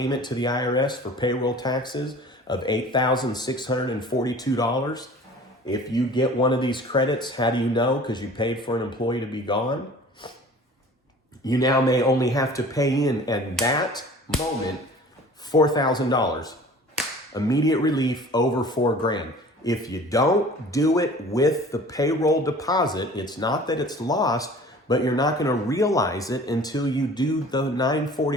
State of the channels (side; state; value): both; normal; correlation 0.45